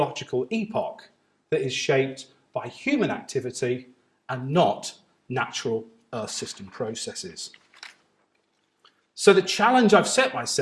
epoch that is shaped by human activity and not natural Earth system processes. So the challenge I've set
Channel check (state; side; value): identical; both; correlation 1.00